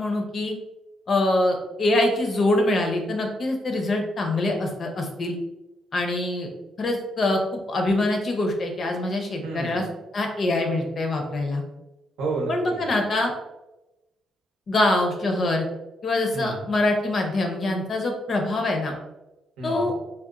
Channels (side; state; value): both; normal; correlation 0.79